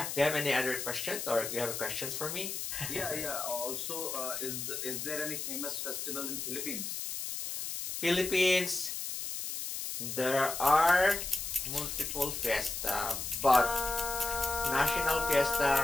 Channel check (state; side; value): noise; left; hiss, 5 dB below the sound